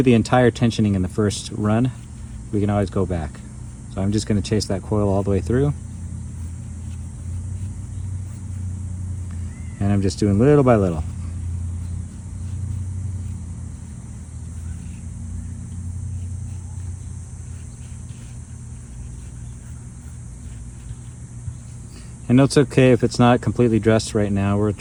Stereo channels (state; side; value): identical; both; correlation 1.00